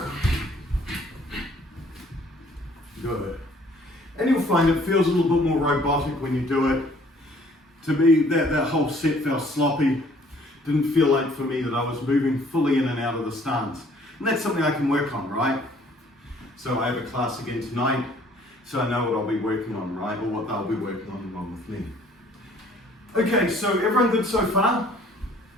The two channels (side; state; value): both; normal; correlation 0.59